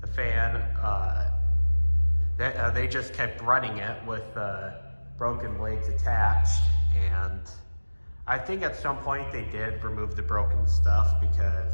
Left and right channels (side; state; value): both; inverted; correlation -1.00